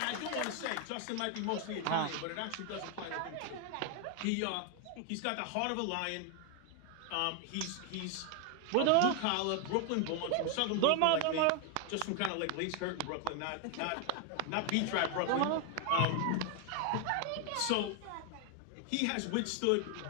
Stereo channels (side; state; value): both; different; correlation 0.01